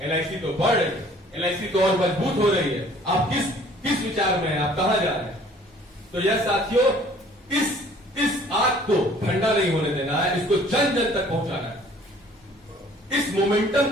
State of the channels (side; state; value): both; normal; correlation 0.54